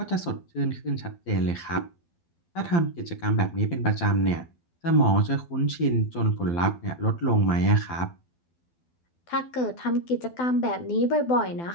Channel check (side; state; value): right; late; 12 ms